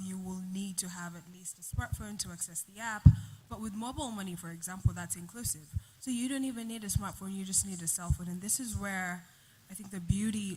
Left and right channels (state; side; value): identical; both; correlation 1.00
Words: you will need to have at least a smartphone to access the app. But with mobile money, for example, that's inclusive. So you don't even need a smartphone, you just need a cell phone. And this is where I think the